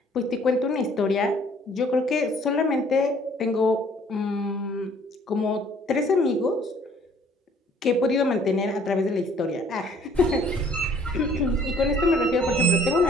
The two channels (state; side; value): normal; both; correlation 0.58